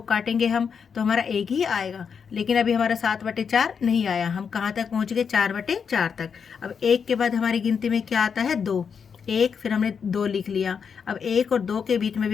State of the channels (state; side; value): quieter; right; 6.5 dB